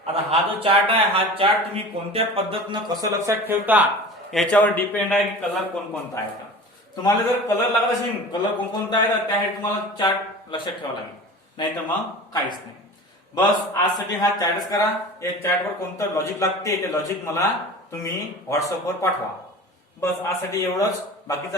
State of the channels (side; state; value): both; normal; correlation 0.37